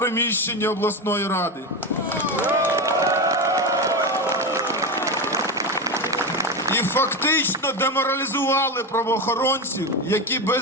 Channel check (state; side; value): normal; both; correlation 0.17